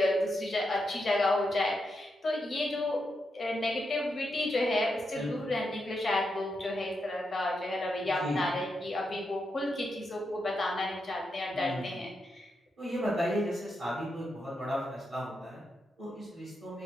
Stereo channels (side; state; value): both; normal; correlation 0.84